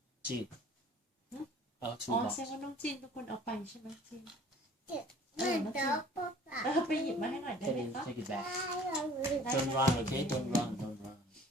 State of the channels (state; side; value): normal; both; correlation 0.51